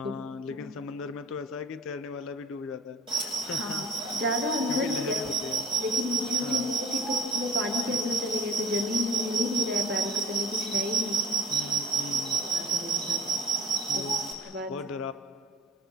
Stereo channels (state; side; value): normal; both; correlation 0.41